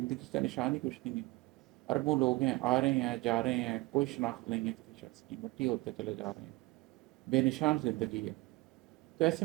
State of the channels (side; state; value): left; quieter; 22.0 dB